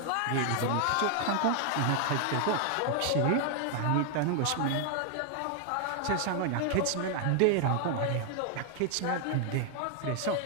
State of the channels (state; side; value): different; both; correlation 0.00